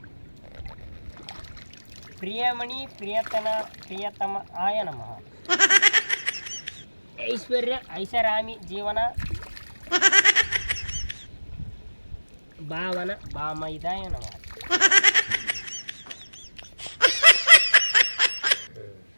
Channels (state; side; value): inverted; both; correlation -1.00